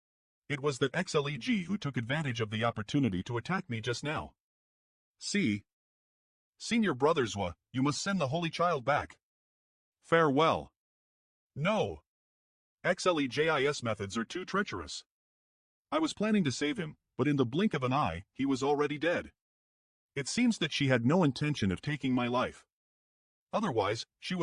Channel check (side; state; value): both; identical; correlation 1.00